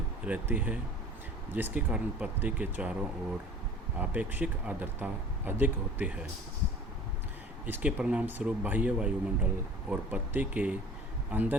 रहती है, जिसके कारण पत्ती के चारों ओर आपेक्षिक आर्द्रता अधिक होती है। इसके परिणाम स्वरूप बाह्य वायुमंडल और पत्ती के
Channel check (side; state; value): both; normal; correlation 0.43